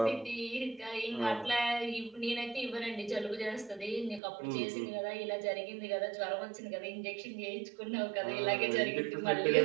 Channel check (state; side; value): drops out; left; at 4.2 s